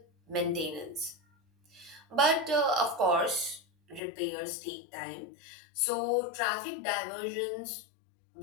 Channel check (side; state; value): right; drops out; at 4.0 s